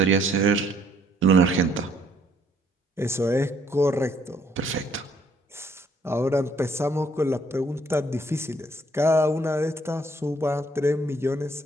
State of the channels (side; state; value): both; normal; correlation 0.65